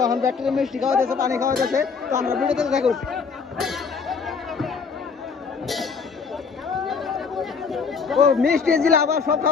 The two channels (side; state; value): right; quieter; 5.5 dB